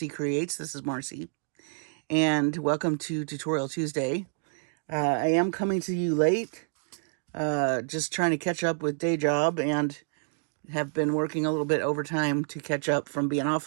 Creates. This is Marcie, and welcome to Tutorial Tuesday. I am coming to you late, just trying to catch up with day job and have been working a little bit overtime to catch up from being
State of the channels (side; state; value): left; silent; digital silence